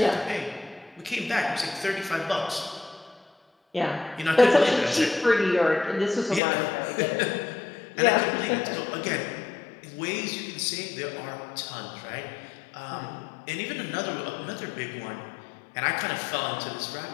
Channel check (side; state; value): right; drops out; at 6.4 s